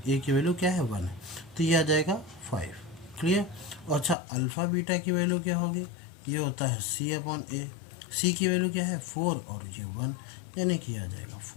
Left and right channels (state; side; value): drops out; right; at 4.2 s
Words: ए की वैल्यू क्या है 1 है, तो ये आ जाएगा 5। क्लियर। और अच्छा अल्फ़ा बीटा की वैल्यू क्या होगी, ये होता है सी अपॉन ए, सी की वैल्यू क्या है 4 और ये 1, यानी कि आ जाएगा